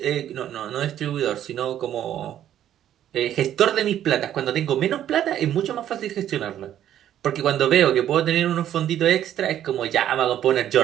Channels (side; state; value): left; quieter; 11.1 dB